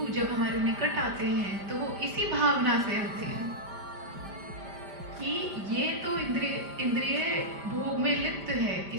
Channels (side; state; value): left; late; 5.0 ms